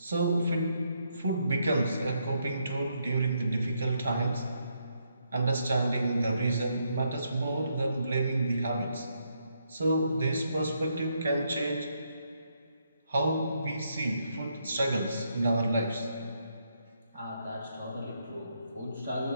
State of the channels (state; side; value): inverted; both; correlation -0.77